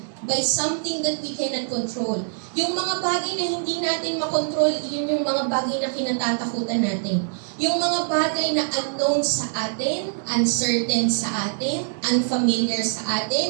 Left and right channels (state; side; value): silent; left; digital silence